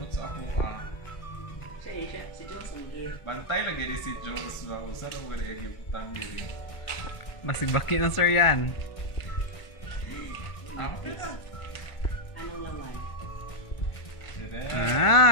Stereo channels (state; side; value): late; right; 1.5 ms